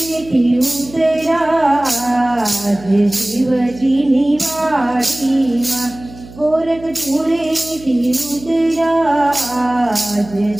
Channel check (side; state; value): right; noise; hum, 18 dB below the sound